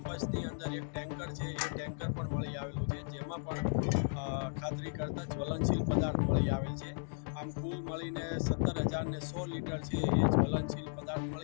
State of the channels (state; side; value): silent; right; digital silence